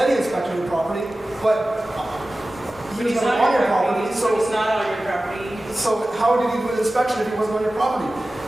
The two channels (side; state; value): both; normal; correlation 0.96